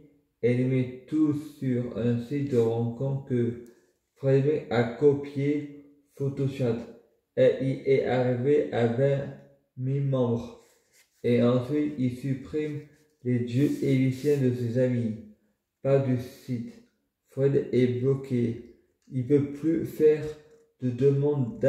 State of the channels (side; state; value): both; identical; correlation 1.00